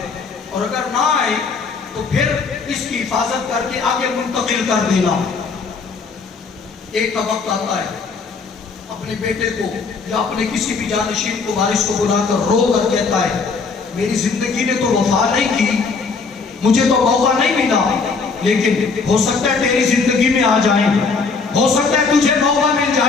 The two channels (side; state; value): right; quieter; 4.7 dB